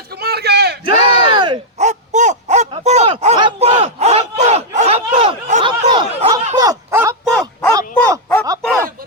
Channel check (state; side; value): normal; both; correlation -0.04